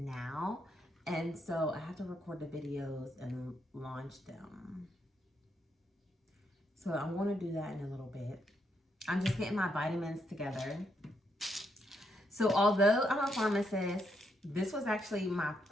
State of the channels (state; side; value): normal; both; correlation 0.78